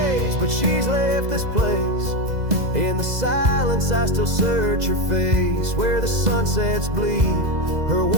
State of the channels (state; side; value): late; left; 2.0 ms